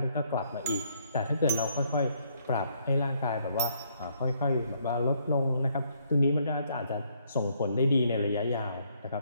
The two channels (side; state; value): both; inverted; correlation -0.70